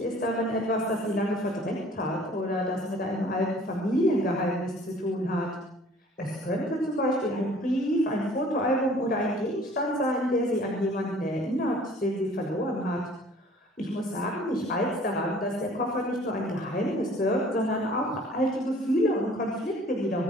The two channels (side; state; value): both; normal; correlation 0.52